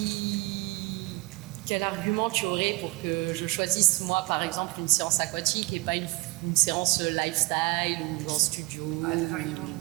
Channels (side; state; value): left; quieter; 24.2 dB